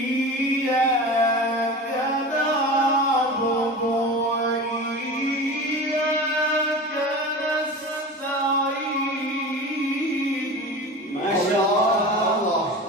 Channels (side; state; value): both; normal; correlation 0.32